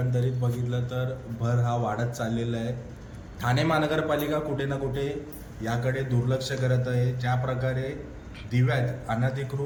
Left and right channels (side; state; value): both; identical; correlation 1.00